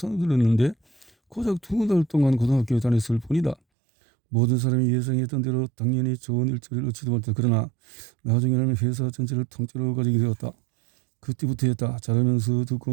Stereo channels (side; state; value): left; drops out; at 3.6 s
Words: 들었는데 고작 2달 동안 고등학교에 다녔을 뿐이다. 모든 사람이 예상했던 대로 당연히 좋은 일자리를 얻지도 못했다. 그러나 나중에는 회사 전체를 통째로 가지게 되었다. 그때부터였다. 자라면서